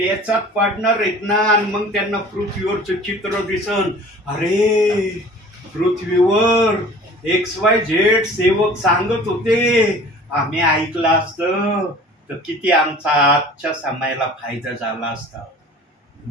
पडणार आहेत ना, आणि मग त्यांना पृथ्वीवरचं चित्र दिसन. अरे पृथ्वीवर XYZ सेवक सांगत होते, आम्ही ऐकलं असतं तर किती आमचा आजच्या समयाला फायदा झाला असता.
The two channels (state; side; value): normal; both; correlation 0.45